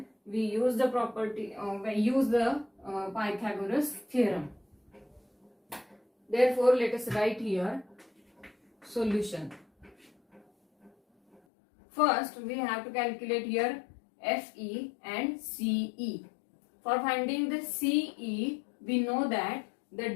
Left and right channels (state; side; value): drops out; right; at 11.4 s